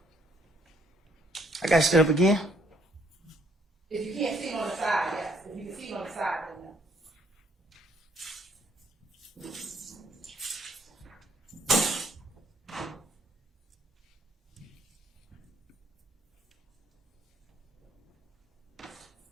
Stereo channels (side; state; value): both; normal; correlation 0.68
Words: I got stood up again. If you can't see it on the side, yes. If you can see it on the side, then no.